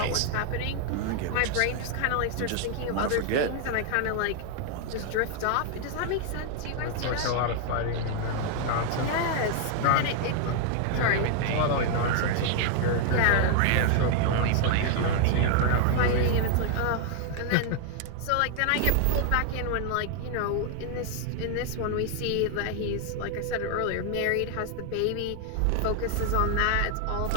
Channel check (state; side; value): different; both; correlation 0.00